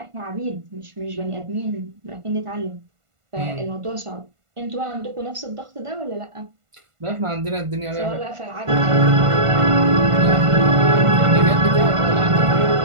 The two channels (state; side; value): late; left; 1.5 ms